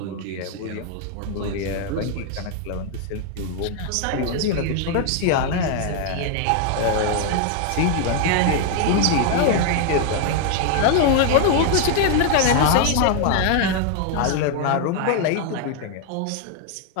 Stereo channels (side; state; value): both; different; correlation 0.00